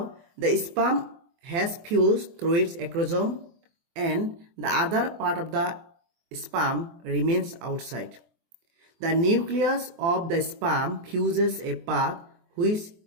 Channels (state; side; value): late; left; 24 ms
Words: the sperm has fused through its acrosome and the other part of the sperm remains outside. The nucleus of the sperm fuses a path which